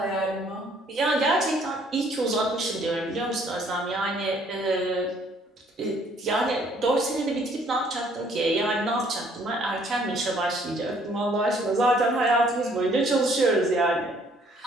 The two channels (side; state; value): both; normal; correlation 0.62